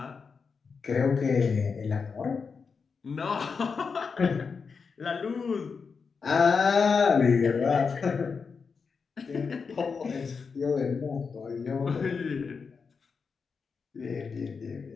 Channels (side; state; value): right; quieter; 5.3 dB